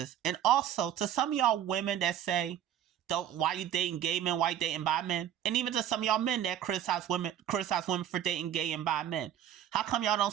And also, to some of y'all women that say, why you dating gay men, why you dating bi men? And even to some of y'all men that criticize women for dating gay and bi men. How come y'all don't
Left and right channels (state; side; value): quieter; left; 10.7 dB